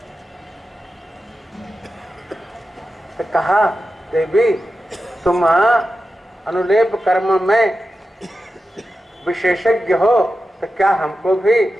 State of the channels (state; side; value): normal; both; correlation 0.91